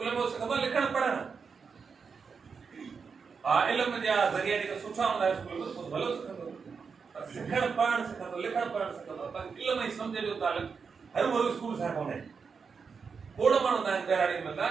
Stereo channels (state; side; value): quieter; left; 5.6 dB